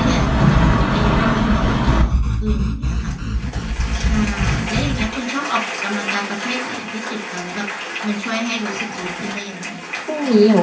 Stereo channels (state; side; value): identical; both; correlation 1.00